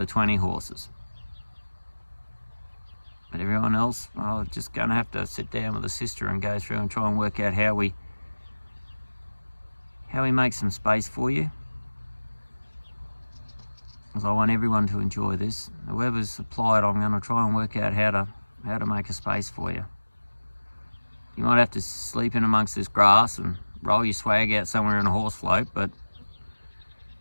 20 horses. But everyone else, well, just going to have to sit down with a sister and go through and try and work out how we make some space for you. Because I want everyone to enjoy this. Whoever's supplied, I'm going to try and work out how to make a space for you. You might have to sleep in amongst this grass and roll your swag out somewhere in a horse float, but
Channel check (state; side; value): inverted; both; correlation -1.00